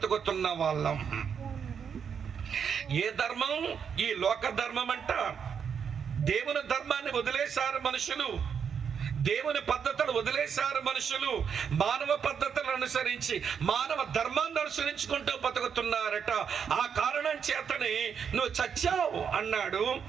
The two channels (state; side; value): quieter; left; 7.1 dB